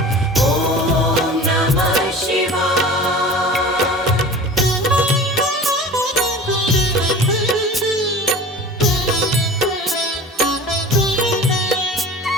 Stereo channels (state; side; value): normal; both; correlation 0.39